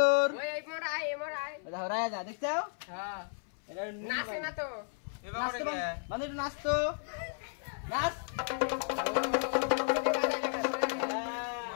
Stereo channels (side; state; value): right; silent; 55 dB below the other